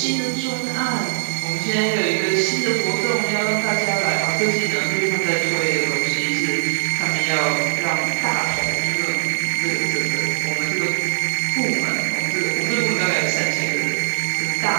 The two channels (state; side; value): silent; left; 58 dB below the other